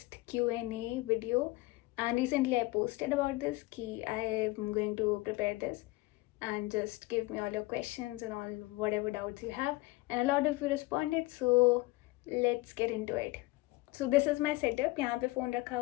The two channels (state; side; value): quieter; right; 20.9 dB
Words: Q&A video and recently I posted about this कि I am going to prepare this and just give me all your questions and all whatever doubts you have, and a lot of you responded, so let's get into it. So this is my setup. यहाँ पे phone रखा